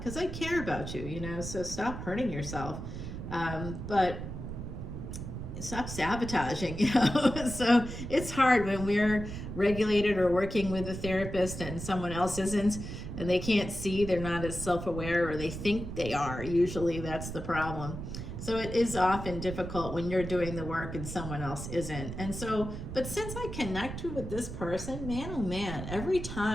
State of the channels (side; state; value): right; noise; rumble, 7 dB below the sound